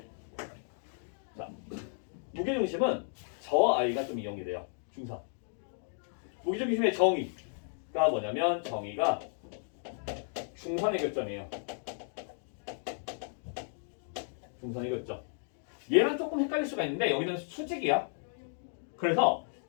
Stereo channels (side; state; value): right; silent; digital silence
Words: 자, 무게중심은 저 아이가 좀 이용이 돼요. 중선. 무게중심의 정의가 뭐냐면 정의가 중선의 교점이에요. 중선의 교점. 얘랑 조금 헷갈릴 수가 있는데 여기는 수직이야. 그래서